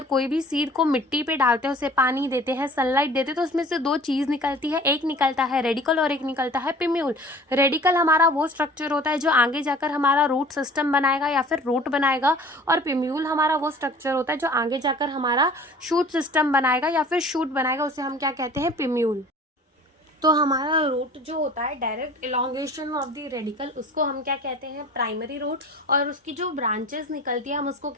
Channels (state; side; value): normal; both; correlation 0.46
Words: कोई भी सीड को मिट्टी पे डालते हैं, उसे पानी देते हैं, सनलाइट देते हैं, तो उसमें से दो चीज निकलती है, एक निकलता है रेडिकल और एक निकलता है पिम्यूल। रेडिकल हमारा वो स्ट्रक्चर होता है जो आगे जाकर हमारा रूट सिस्टम बनाएगा या फिर रूट बनाएगा, और पिम्यूल हमारा वो स्ट्रक्चर होता है जो आगे जाकर हमारा शूट सिस्टम बनाएगा या फिर शूट बनाएगा, उसे हम क्या कहते हैं, पिम्यूल। तो हमारा रूट जो होता है direct elongation of the radical, उसको हम क्या कहते हैं, प्राइमरी रूट, और उसकी जो ब्रांचेस निकलती है हम उसको